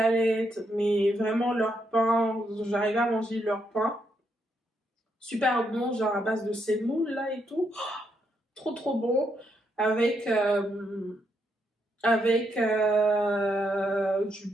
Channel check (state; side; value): normal; both; correlation 0.78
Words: mais vraiment leur pain, j'arrivais à manger leur pain. Super bon, genre à base de semoule, là, et tout. Trop, trop bon. Avec, du